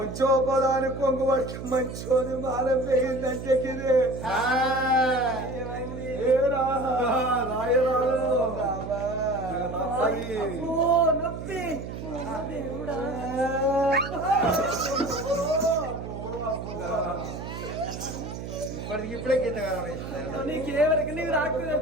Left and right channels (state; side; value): noise; right; hum, 8 dB below the sound